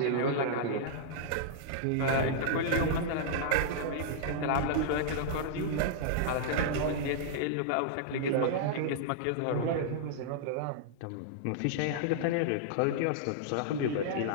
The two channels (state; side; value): different; both; correlation -0.01